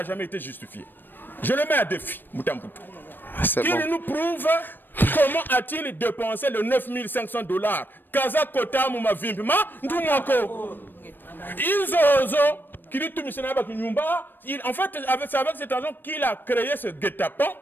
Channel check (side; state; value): right; late; 0.094 ms